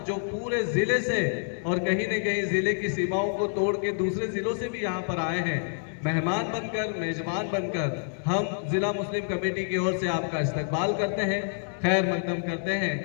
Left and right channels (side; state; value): right; silent; digital silence